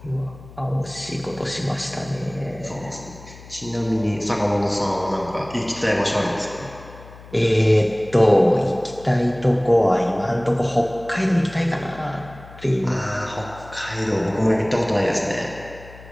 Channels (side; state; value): left; noise; hum, 19 dB below the sound